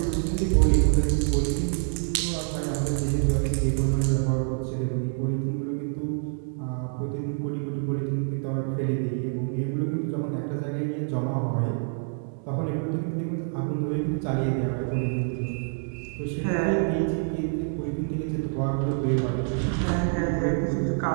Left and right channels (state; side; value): silent; left; 60 dB below the other